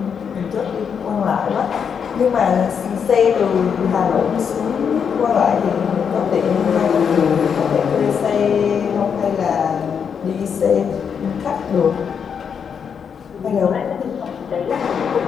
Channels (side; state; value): right; quieter; 7.0 dB